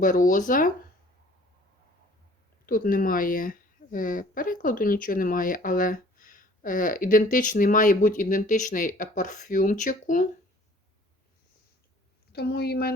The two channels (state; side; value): normal; both; correlation 0.53